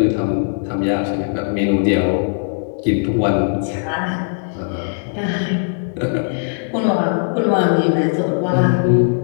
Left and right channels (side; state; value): right; silent; 67 dB below the other